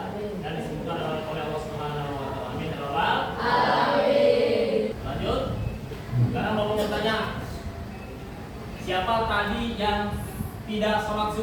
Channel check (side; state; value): both; identical; correlation 1.00